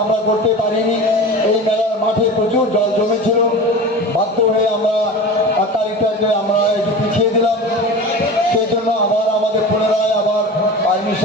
আমরা করতে পারিনি। এই মেলার মাঠে প্রচুর জল জমেছিল, বাধ্য হয়ে আমরা তারিখটাকে আমরা একটু পিছিয়ে দিলাম। সেই জন্য আবার আমাদের পুনরায় আবার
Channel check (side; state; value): both; normal; correlation 0.32